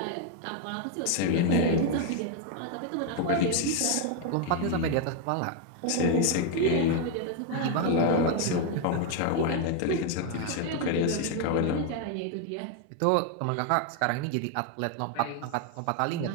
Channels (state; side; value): different; both; correlation 0.01